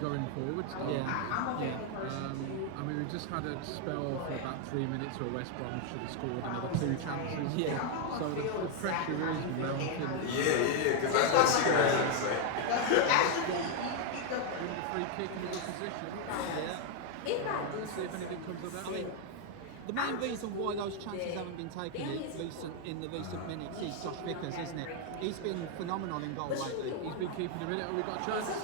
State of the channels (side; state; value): both; different; correlation 0.01